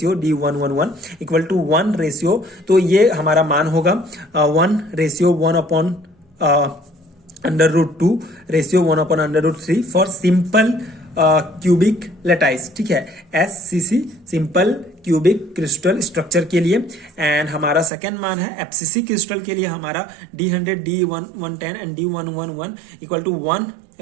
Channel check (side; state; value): left; drops out; at 17.9 s